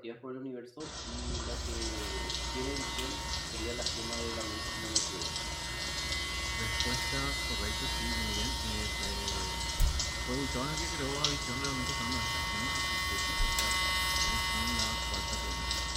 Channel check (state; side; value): identical; both; correlation 1.00